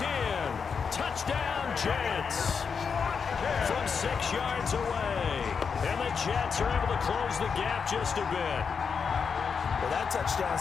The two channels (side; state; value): right; quieter; 6.0 dB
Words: in. Touchdown, Jets. From 6 yards away. And the Jets are able to close the gap just a bit. Well, that touchdown